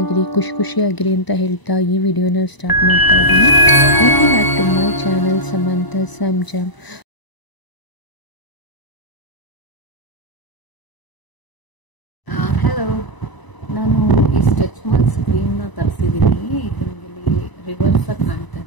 ಖುಷಿಯಾಗಿರಿ ಅಂತ ಹೇಳ್ತಾ ಈ ವಿಡಿಯೋನ ಸ್ಟಾರ್ಟ್ ಮಾಡ್ತಾ ಇದ್ದೀನಿ. Welcome back to my channel Samanta Sanjam. Hello, ನಾನು ಈ ಸ್ಟ್ರೆಚ್ ಮಾರ್ಕ್ ಸ್ಕ್ರೀನ್ನ ತರಿಸಿದ್ದೀನಿ. ಇದು ನಿಮಗೆ ರಿವರ್ಸ್ ಕಾಣ್ತಾ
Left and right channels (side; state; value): right; late; 1.0 ms